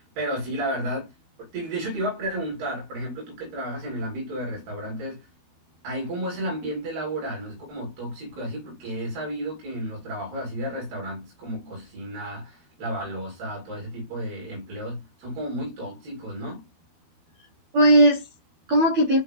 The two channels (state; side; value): late; left; 12 ms